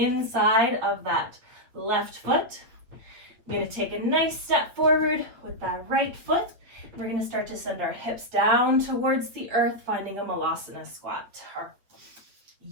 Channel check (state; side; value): late; left; 8.3 ms